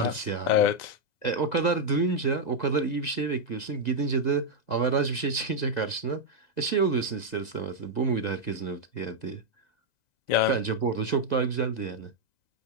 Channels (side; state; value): right; late; 2.0 ms